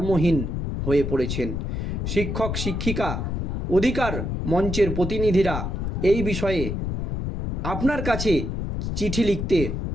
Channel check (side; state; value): left; noise; rumble, 2 dB below the sound